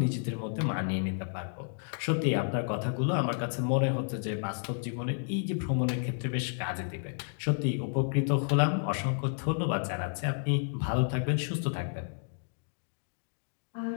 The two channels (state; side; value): silent; right; digital silence